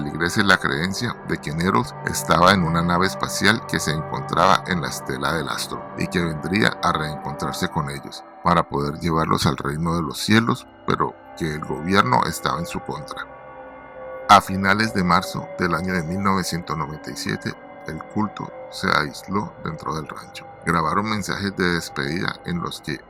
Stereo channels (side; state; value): both; identical; correlation 1.00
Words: la creencia de que Nettles estaba en una nave espacial que se encontraba en la estela del astro y que vendría a reencontrarse con ellos para poder llevarlos al reino de los cielos, pero que el gobierno estaba en su contra. A finales de marzo del año de 1997, el culto se aisló dentro del rancho. Grabaron mensajes de despedida en los que